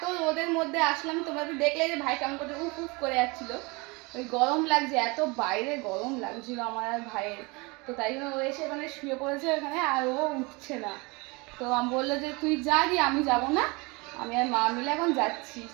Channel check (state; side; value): quieter; left; 26.8 dB